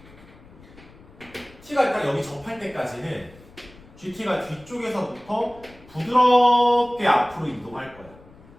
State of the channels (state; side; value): noise; left; rumble, 23 dB below the sound